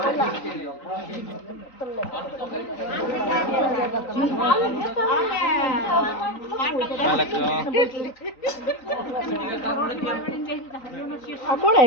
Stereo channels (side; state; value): right; late; 3.9 ms